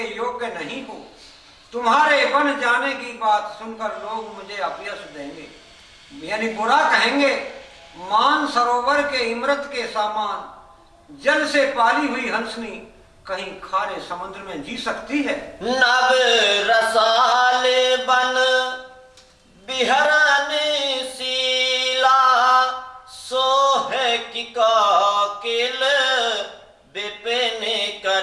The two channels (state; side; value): identical; both; correlation 1.00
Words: योग्य नहीं हो। तुम्हारे वन जाने की बात सुनकर लोग मुझे अपयश देंगे, यानी बुरा कहेंगे। मान सरोवर के इमरत के सामान जल से पाली हुई हंसनी कहीं खारे समुद्र में जी सकती है? नव रसाल बन बिहरन शीला, सोहे की काकिल विपिन